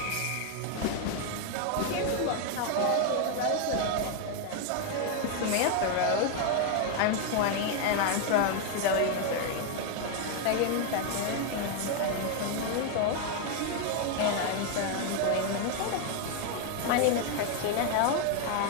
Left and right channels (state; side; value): different; both; correlation 0.01